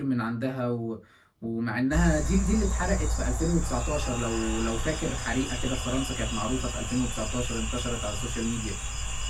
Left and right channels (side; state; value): both; identical; correlation 1.00